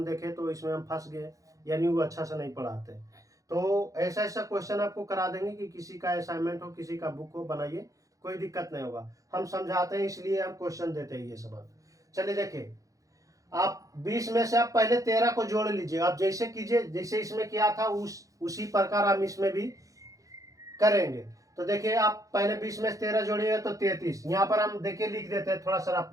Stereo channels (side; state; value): left; late; 0.16 ms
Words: देखे तो इसमें हम फंस गए, यानी वो अच्छा से नहीं पढ़ाते। तो ऐसा ऐसा क्वेश्चन आपको करा देंगे कि किसी का असाइनमेंट हो, किसी का बुक हो, बनाइए, कोई दिक्कत नहीं होगा, हम समझाते हैं इसलिए हम क्वेश्चन देते हैं ये सब। चलिए देखिए, आप 20 में से आप पहले 13 को जोड़ लीजिए, आप जैसे कीजिए जैसे इसमें किया था उसी प्रकार हम इसमें भी करेंगे। तो देखिए आप पहले 20 में से 13 जोड़िएगा तो 33, यहाँ पर हम देखिए लिख देते हैं थोड़ा सा रफ